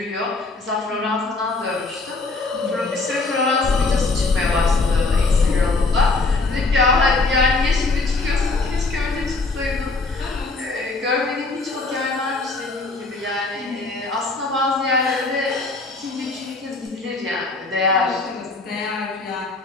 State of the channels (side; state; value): right; quieter; 3.5 dB